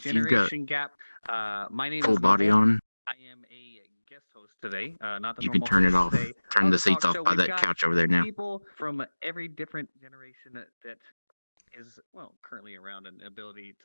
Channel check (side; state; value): both; inverted; correlation -1.00